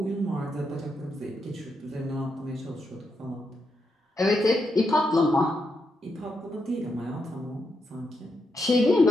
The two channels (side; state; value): both; normal; correlation 0.82